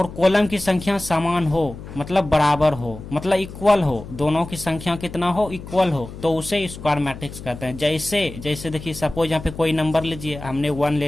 कॉलम की संख्या समान हो मतलब बराबर हो, मतलब इक्वल हो, दोनों की संख्या कितना हो, इक्वल हो, तो उसे स्क्वायर मैट्रिक्स कहते हैं। जैसे देखिए सपोज यहाँ पे कोई नंबर लीजिए, हमने 1 ले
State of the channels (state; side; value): noise; left; hum, 13 dB below the sound